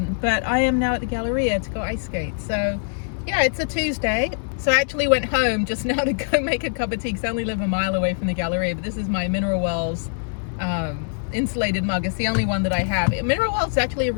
But I am now at the Galleria to go ice skate. So yeah, it's a Tuesday. So I actually went home just now to go make a cup of tea because I only live a mile away from the Galleria. But this is my Mineral Wells insulated mug. It's the only one that I have. Mineral Wells is actually a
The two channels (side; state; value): right; silent; digital silence